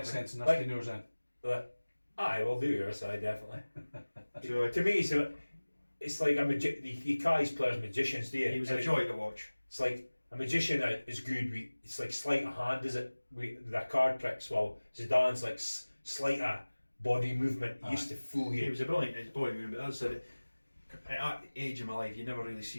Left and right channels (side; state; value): both; inverted; correlation -1.00